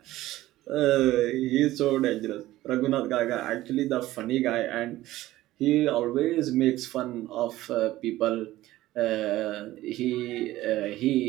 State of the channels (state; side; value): quieter; left; 16.0 dB